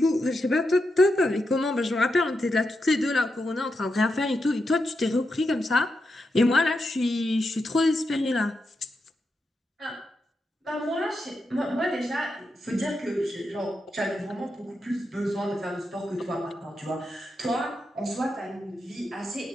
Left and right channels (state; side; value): normal; both; correlation 0.86